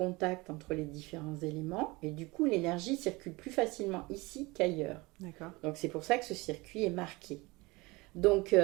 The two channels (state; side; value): quieter; left; 23.6 dB